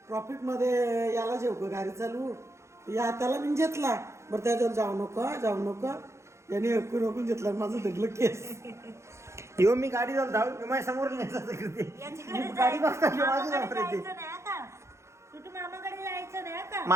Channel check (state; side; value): late; left; 0.14 ms